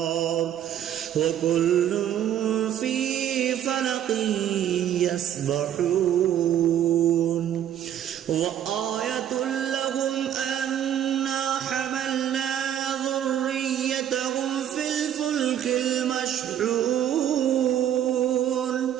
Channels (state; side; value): quieter; left; 10.4 dB